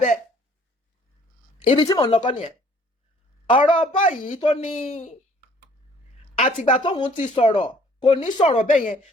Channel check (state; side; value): normal; both; correlation 0.58